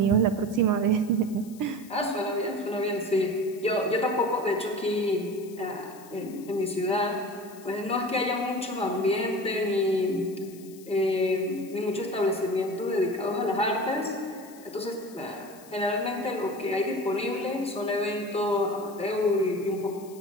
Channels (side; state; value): left; noise; hiss, 22 dB below the sound